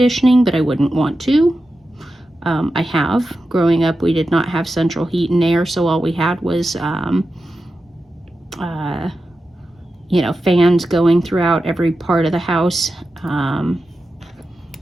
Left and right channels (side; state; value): both; normal; correlation 0.91